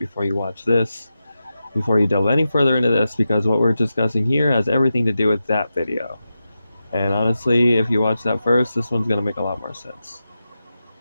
you watch this, before you delve any further into this, because what we're discussing here has everything to do with that video. And honestly, if you watch that first, this one's going to make a lot more sense.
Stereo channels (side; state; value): both; inverted; correlation -0.91